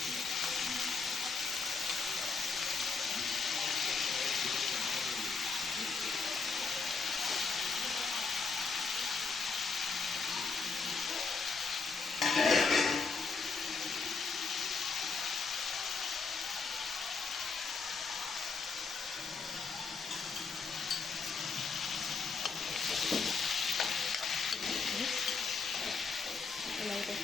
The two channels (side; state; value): right; quieter; 4.8 dB